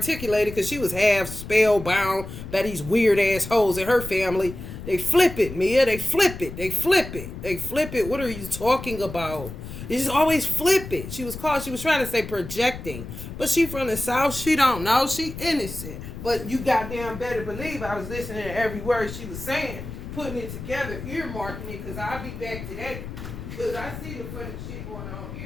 it because she was half spellbound by these weird assholes in her family. They flip it, Mia. They flip it. They flip it. They flip it. What are you talking about? They just always flip it. She was trying to say projecting. But she from the South. She don't know. She innocent. But you goddamn better believe I was listening to every word she was saying. Putting it together. Earmarking it. Because I'll be back to that. Because I see the funny shit going on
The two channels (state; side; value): noise; left; rumble, 10 dB below the sound